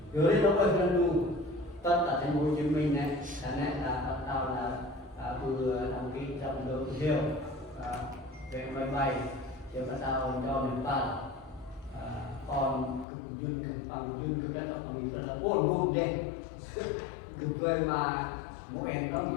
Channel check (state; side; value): drops out; right; at 13.1 s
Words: rồi đấy nó có dân luôn tất cả thành phố Hồ Chí Minh này là bắt đầu là vừa đăng ký trong đầu tiêu về máy bay thì bắt đầu cho mình vào còn duyên bằng duyên cái đó còn mình là buồn buồn đen được về mà mỗi em đó nhỉ